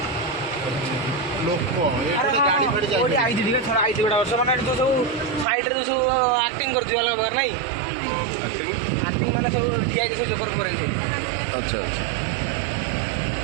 ଲୋକ ଏଠି ଗାଡ଼ି ଫାଡ଼ି କୋଉଠି ଯାଇ ଆଇଛି ଟିକେ ଛଡ଼ା ଆଇଛି ଗୋଟେ ବର୍ଷ ମାନେ ଏଠି ଯୋଉ ସବୁ ସାଇଡରେ ଯୋଉ ସବୁ ଆକ୍ଟିଂ କରୁଛି ଅଲଗା ପ୍ରକାର ନାଇଁ ଆକ୍ଟିଂ ମାନେ ସବୁ ଠିଆ ହେଇକି ସବୁ ଜୋକର ଫୋକର ହେଇଛି। ଆଚ୍ଛା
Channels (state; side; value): drops out; left; at 5.5 s